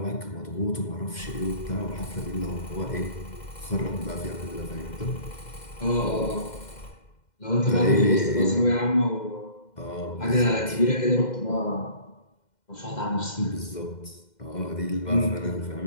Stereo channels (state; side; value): late; right; 2.1 ms